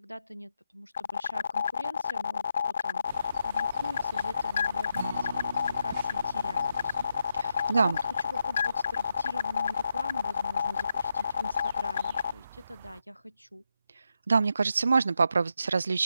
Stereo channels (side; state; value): both; inverted; correlation -0.84